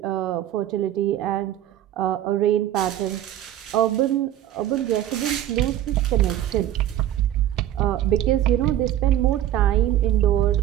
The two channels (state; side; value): quieter; left; 12.1 dB